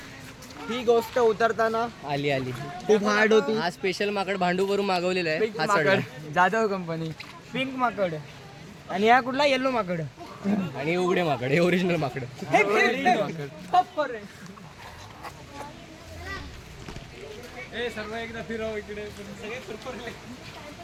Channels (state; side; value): identical; both; correlation 1.00